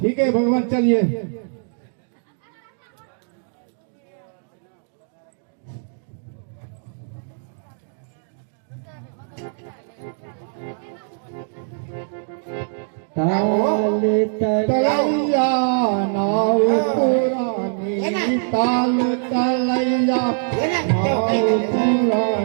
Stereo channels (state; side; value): silent; left; digital silence